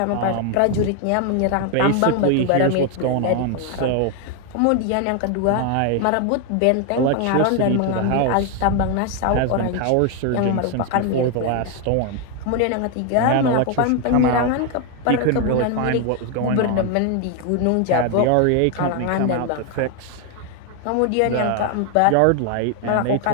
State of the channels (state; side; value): different; both; correlation 0.01